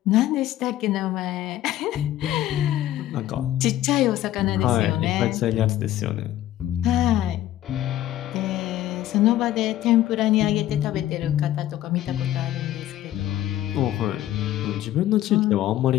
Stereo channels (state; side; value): quieter; right; 13.4 dB